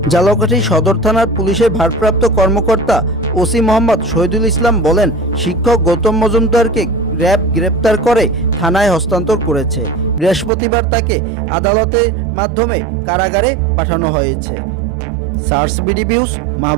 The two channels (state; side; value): drops out; left; at 10.5 s